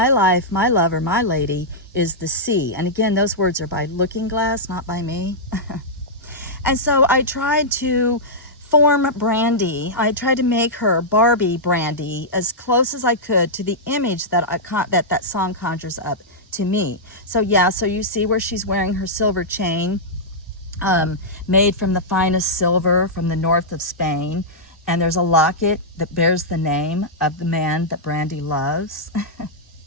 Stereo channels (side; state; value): both; normal; correlation -0.10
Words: life, my lover, my lady is the sea." And again, those words are by Looking Glass, not by me. And so I tried to form Brandy. I tried to make her Barbie Brandy as close as I could to the image that that song conjures up to me. So yeah, so you see where she's wearing her silver chain, made from the finest silver from the north of Spain. And there's a locket that bears the name of the man that Brandy loves.